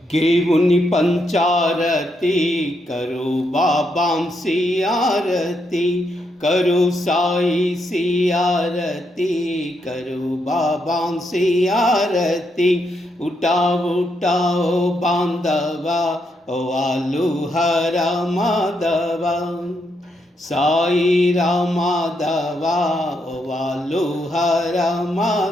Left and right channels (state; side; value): normal; both; correlation 0.79